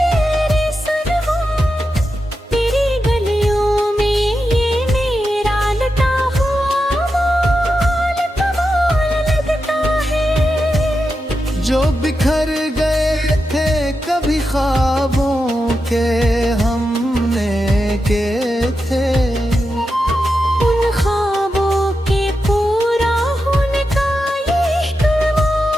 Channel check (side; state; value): both; normal; correlation 0.89